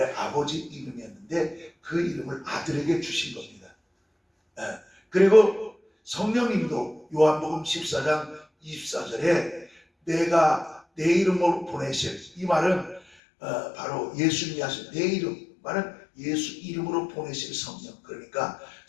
아버지 이름이었는데 그 이름을 아들에게 주신 겁니다. 그리고 성령님도 요한복음 14장 24절에 내가 내 이름으로 보내실, 이 말은 바로 예수님이 하신 내 이름, 말은 예수 이름으로 보내실 성령, 그러니까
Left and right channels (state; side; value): drops out; right; at 13.0 s